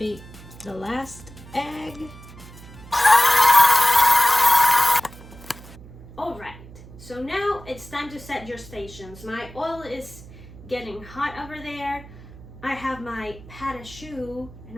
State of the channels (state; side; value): noise; right; hum, 18 dB below the sound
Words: the last egg. Alright, so now it's time to set your stations. My oil is getting hot over there. I have my pâte à choux, and